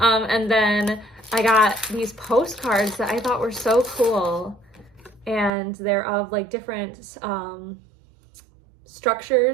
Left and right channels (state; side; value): drops out; left; at 5.5 s